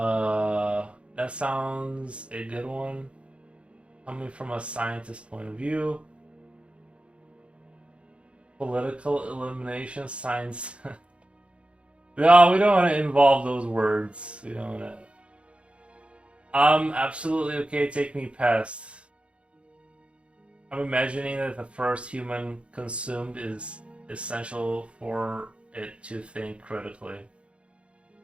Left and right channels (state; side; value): late; left; 0.059 ms